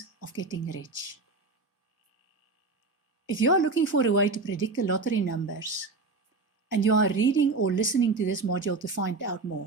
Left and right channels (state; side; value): quieter; left; 3.7 dB